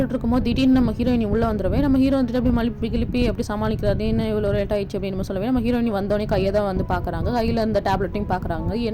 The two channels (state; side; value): identical; both; correlation 1.00